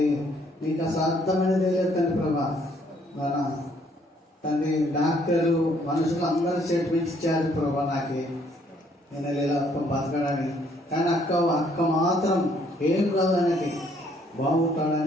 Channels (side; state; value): both; normal; correlation 0.66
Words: నీకు అసాధ్యమైనది లేదు తండ్రి ప్రభా. తండ్రి డాక్టర్లు మనుషులు అందరూ స్టేట్మెంట్స్ ఇచ్చారు ప్రభా నాకు నేను ఇలా బతకడానికి. కానీ అక్క మాత్రం ఏం కాదు అనేది